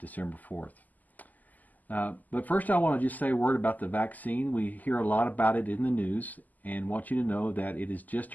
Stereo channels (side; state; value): right; late; 0.082 ms